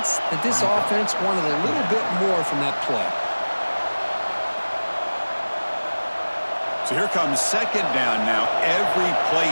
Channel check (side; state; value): both; inverted; correlation -1.00